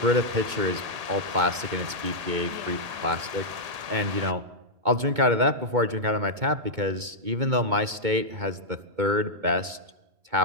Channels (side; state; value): left; late; 2.2 ms